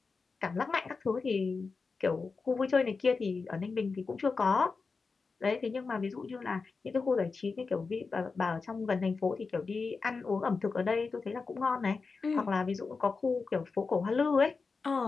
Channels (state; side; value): quieter; right; 4.5 dB